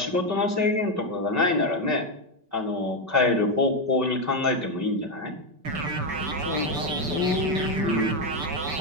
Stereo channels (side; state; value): left; late; 5.3 ms